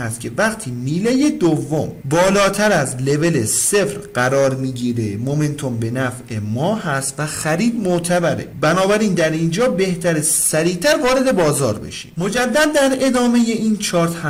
که وقتی میله دوم بالاتر از لول 0 قرار میگیره مومنتوم به نفع ما هست و خرید معتبره. بنابراین در اینجا بهتره سریعتر وارد بازار بشیم. مجدد در ادامه این چارت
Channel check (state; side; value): identical; both; correlation 1.00